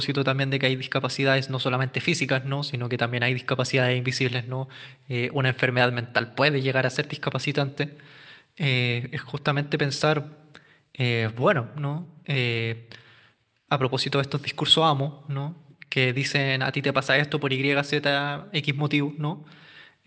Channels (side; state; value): both; identical; correlation 1.00